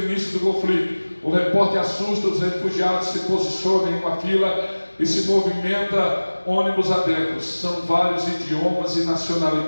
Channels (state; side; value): inverted; both; correlation -1.00